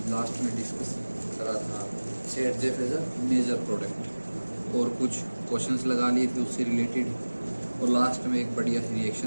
लास्ट में डिस्कस करा था Saytzeff as a major product और कुछ क्वेश्चंस लगा लिए थे उससे रिलेटेड और लास्ट में एक बढ़िया सी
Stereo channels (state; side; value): inverted; both; correlation -1.00